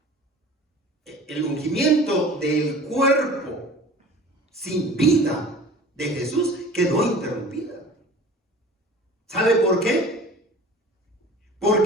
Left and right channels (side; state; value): both; normal; correlation 0.43